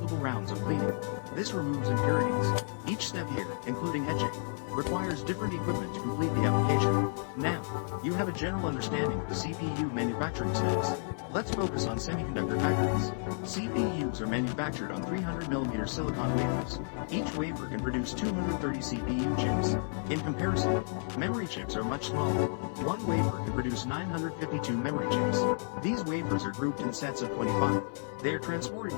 rounds of cleaning. This removes impurities. Each step here, including etching, requires different equipment to complete the application. Now, you have a general understanding of the CPU manufacturing steps. Let's focus on semiconductor factories. CPUs are manufactured on 300mm silicon wafers. Each wafer can produce 230 CPU chips. In comparison, memory chips are much smaller. One wafer can produce 952 memory chips. These wafers are grouped in sets of 25. They are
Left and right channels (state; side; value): silent; right; 57 dB below the other